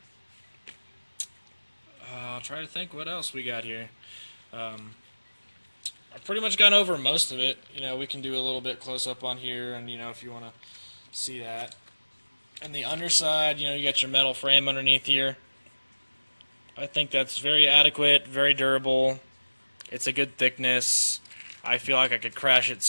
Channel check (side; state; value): both; inverted; correlation -1.00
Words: try to think what else we got here. I've pretty much gone over most of it. We can do a little bit close up on here, and if you want to see that. And the underside, you got your metal frame underneath here. I think that's very adequate, very durable. It's a good thickness. I feel like I could crash it